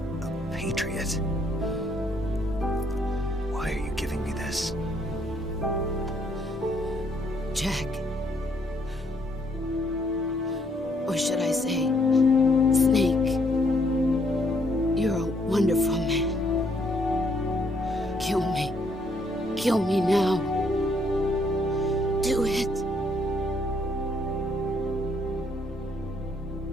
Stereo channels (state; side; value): normal; both; correlation 0.69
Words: A patriot? Why are you giving me this? Jack. Or should I say, Snake. You're a wonderful man. Kill me. Kill me now. Do it.